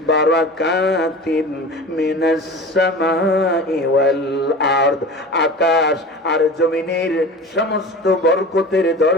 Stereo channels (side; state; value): both; normal; correlation 0.35